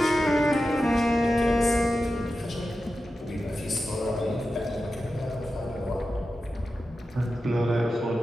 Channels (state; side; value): normal; both; correlation 0.92